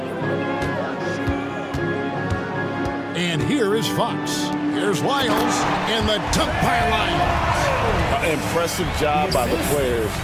And here is Fox. Here's Lyles in the dunk by Lyles. Impressive job by the players,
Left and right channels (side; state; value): both; identical; correlation 1.00